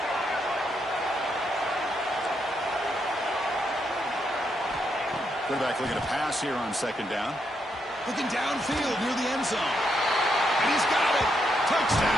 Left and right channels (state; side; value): normal; both; correlation 0.79